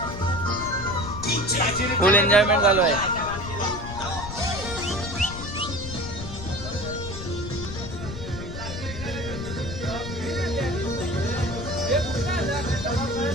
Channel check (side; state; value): left; noise; rumble, 9 dB below the sound